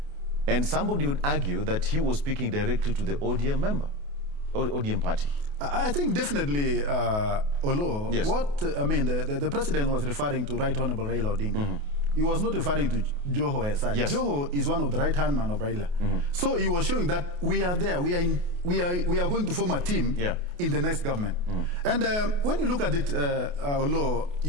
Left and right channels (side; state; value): left; late; 28 ms